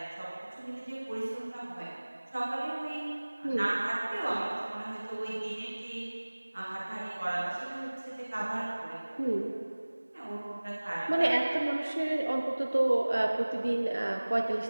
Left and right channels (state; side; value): inverted; both; correlation -1.00